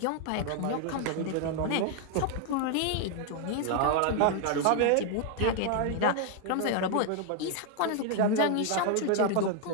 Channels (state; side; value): different; both; correlation 0.00